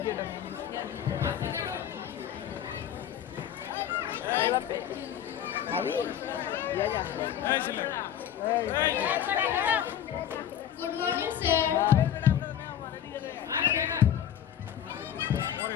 Good morning sir.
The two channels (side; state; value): right; quieter; 10.1 dB